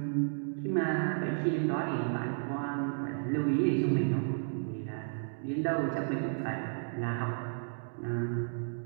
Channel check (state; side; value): silent; left; digital silence